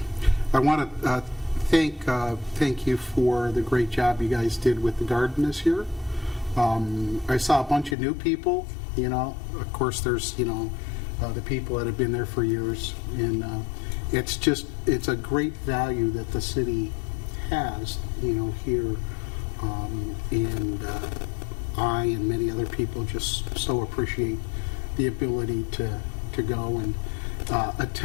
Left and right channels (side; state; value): right; drops out; at 8.0 s